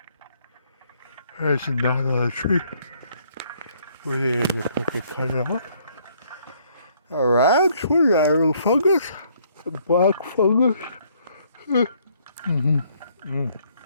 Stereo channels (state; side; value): inverted; both; correlation -0.66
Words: There's a knot on a tree. We're going to cut it off. Alright, what is that, a little fungus? A black fungus?